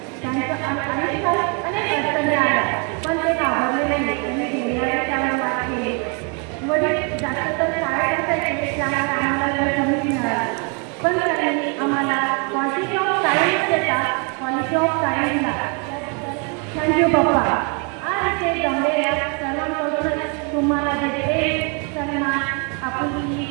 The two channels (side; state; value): left; quieter; 35.3 dB